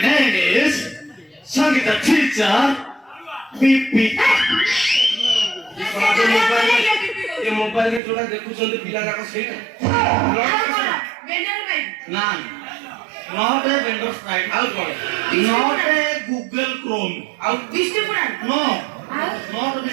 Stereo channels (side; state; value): left; drops out; at 8.0 s